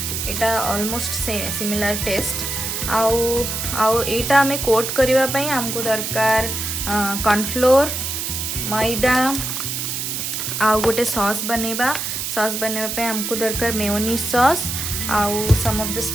यहाँ ऑलमोस्ट सिमिलर टेस्ट। आउ एटा आमे कोट करने आमको दरकार कॉर्नफ्लोर, मैदा, आउ गोटे सॉस बनेबा। सॉस बनवाई आमको दरकार मेयोनीज सॉस, आउ some of the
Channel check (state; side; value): noise; right; hiss, 3 dB below the sound